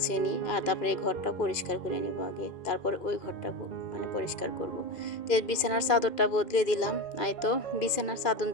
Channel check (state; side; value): late; right; 2.5 ms